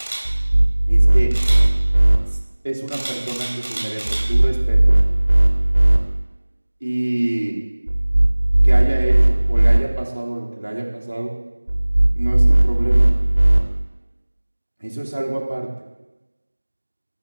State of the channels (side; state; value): both; inverted; correlation -1.00